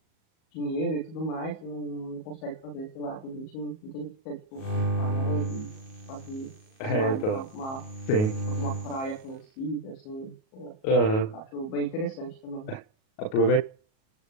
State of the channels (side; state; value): right; late; 37 ms